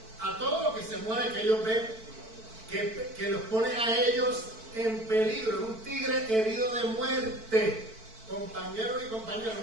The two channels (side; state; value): left; late; 4.5 ms